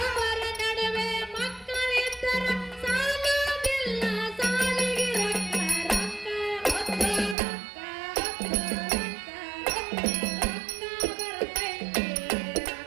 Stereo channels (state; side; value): drops out; left; at 7.4 s